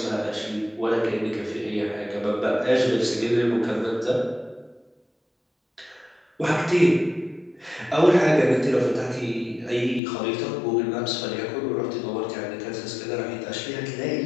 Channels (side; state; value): right; drops out; at 10.0 s